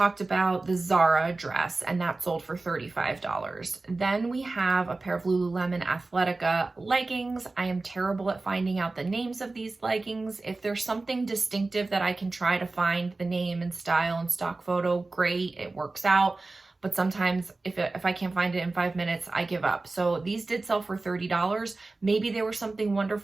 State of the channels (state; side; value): quieter; left; 3.4 dB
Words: about the Zara dress, and that sold for $35. Then we have a pair of Lululemon Athletica leggings. I am terrible at finding out the names of these leggings. If there's something distinctive that I can try to find the name and style and stock photo, great, it works out. But sometimes if I can't find it in 5 minutes, I give up. So these did sell for $30. Maybe they were something